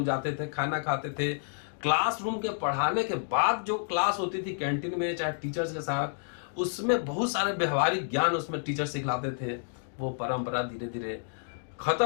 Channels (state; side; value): silent; right; digital silence